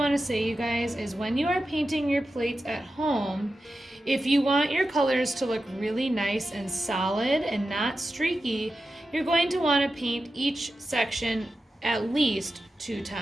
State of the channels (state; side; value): normal; both; correlation 0.91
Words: to say, you guys, is when you are painting your plates at home, if you want your colors to look really nice and solid and not streaky, you're going to want to paint each section at least 2